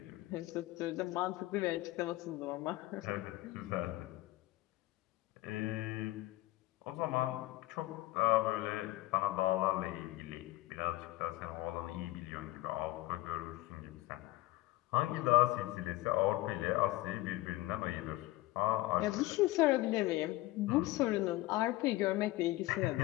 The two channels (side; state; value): right; quieter; 18.2 dB